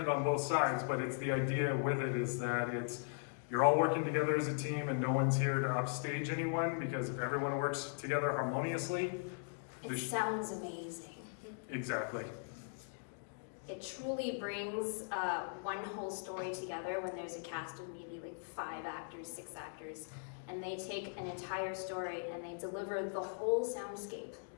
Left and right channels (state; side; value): silent; right; digital silence